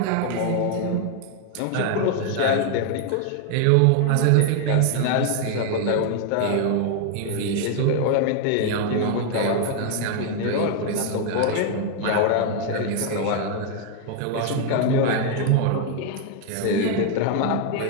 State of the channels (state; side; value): different; both; correlation 0.00